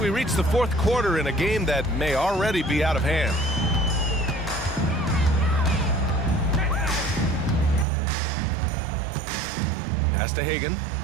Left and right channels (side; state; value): left; drops out; at 7.9 s